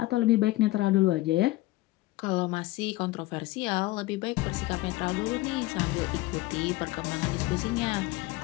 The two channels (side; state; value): right; quieter; 19.0 dB